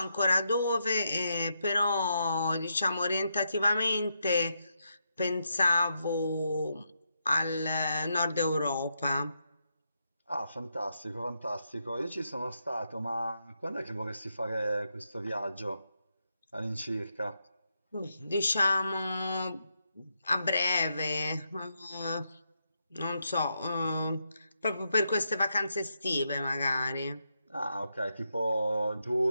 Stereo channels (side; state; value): both; inverted; correlation -0.82